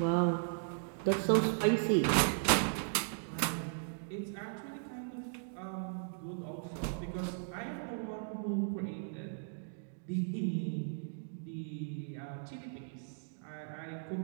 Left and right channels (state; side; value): silent; left; digital silence